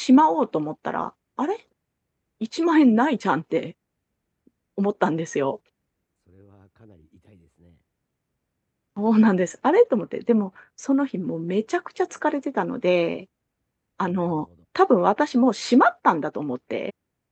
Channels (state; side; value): identical; both; correlation 1.00